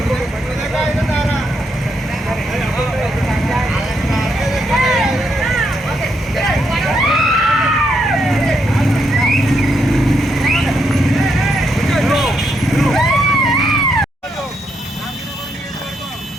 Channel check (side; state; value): both; normal; correlation 0.78